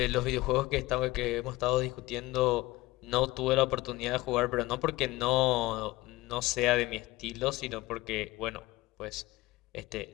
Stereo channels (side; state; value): right; quieter; 19.6 dB